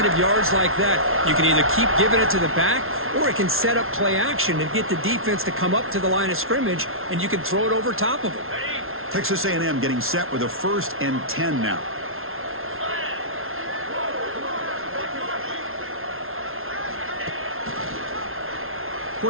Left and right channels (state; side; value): late; left; 0.61 ms